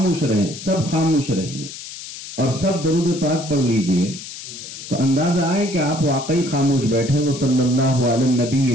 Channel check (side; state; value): left; noise; hiss, 12 dB below the sound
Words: رہیں، سب خاموش رہیں اور سب درود پاک پڑھ لیجئے تو اندازہ آئے کہ آپ واقعی خاموش بیٹھے. وہ صلی اللہ علیہ النبی